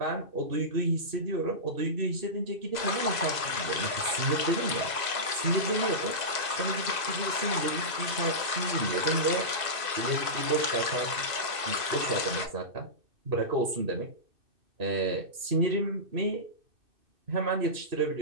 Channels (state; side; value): late; left; 2.6 ms